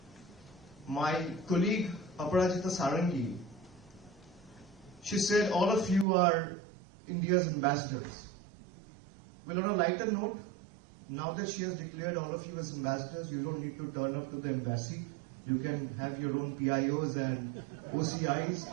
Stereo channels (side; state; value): left; drops out; at 6.1 s